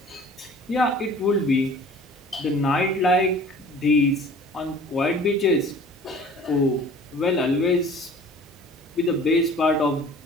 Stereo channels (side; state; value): both; normal; correlation 0.47